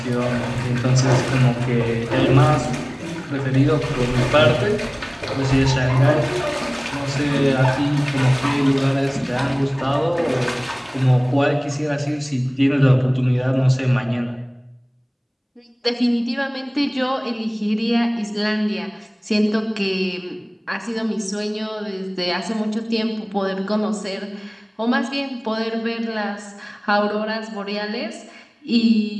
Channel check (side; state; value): both; identical; correlation 1.00